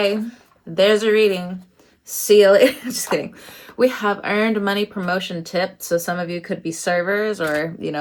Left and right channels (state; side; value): identical; both; correlation 1.00